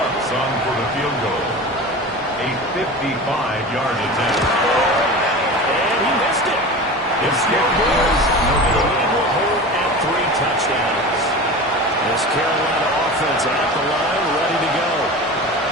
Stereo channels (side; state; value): both; normal; correlation 0.32